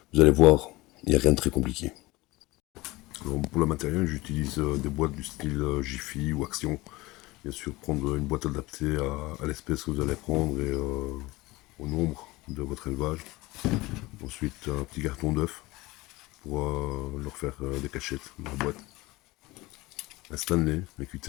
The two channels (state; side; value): quieter; right; 21.0 dB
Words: Vous allez voir, il n'y a rien de très compliqué. Alors pour le matériel, j'utilise des boîtes du style Jiffy ou Action. Bien sûr, prendre une boîte adaptée à l'espèce que vous allez prendre et au nombre de votre élevage. Ensuite, un petit carton d'œuf pour leur faire des cachettes dans la boîte. Un Stanley, un